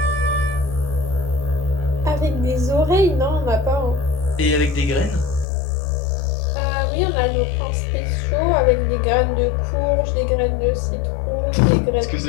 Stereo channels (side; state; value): right; drops out; at 5.5 s